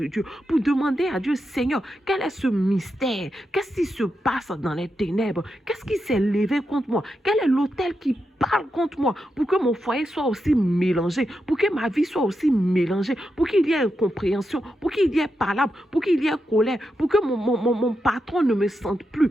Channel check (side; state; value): both; normal; correlation 0.86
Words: Dieu, pour demander à Dieu, Seigneur, quel est ce mystère? Qu'est-ce qui se passe dans les ténèbres? Qu'est-ce qui s'est levé contre moi? Quel est l'autel qui parle contre moi pour que mon foyer soit aussi mélangé, pour que ma vie soit aussi mélangée, pour qu'il y ait incompréhension, pour qu'il y ait palabre, pour qu'il y ait colère, pour que mon patron ne me sente plus?